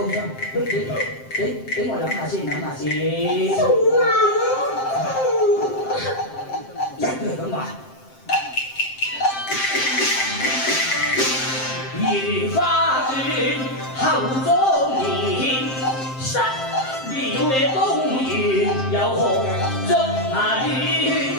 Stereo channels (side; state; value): right; late; 7.6 ms